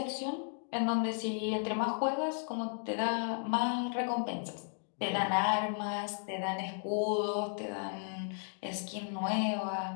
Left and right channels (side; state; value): right; silent; 55 dB below the other